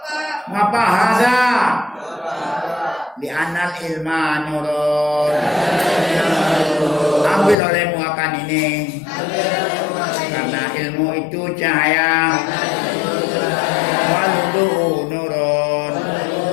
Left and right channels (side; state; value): right; drops out; at 7.6 s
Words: hada di anal ilma nurun ambil olehmu akan ini karena ilmu itu cahaya waludu nurun